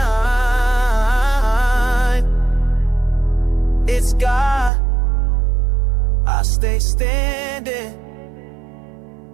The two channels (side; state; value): left; drops out; at 4.7 s